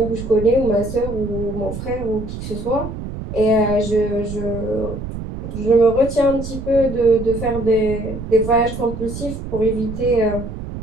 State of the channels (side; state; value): right; noise; rumble, 8 dB below the sound